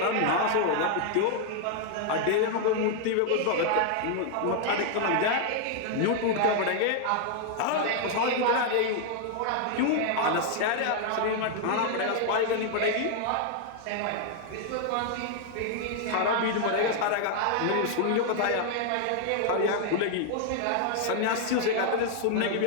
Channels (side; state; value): both; different; correlation 0.00